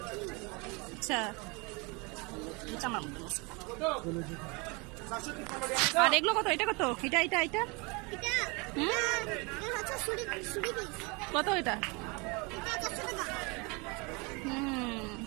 আচ্ছা আমার মতো। আর এগুলো কত? এটা কত? এটা এটা এটা কত এটা?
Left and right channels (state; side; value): quieter; left; 28.8 dB